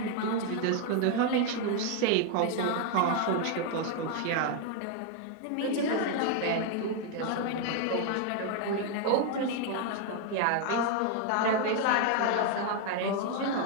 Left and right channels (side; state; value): both; different; correlation 0.00